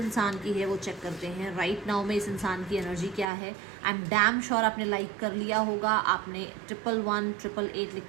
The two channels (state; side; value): drops out; left; at 3.2 s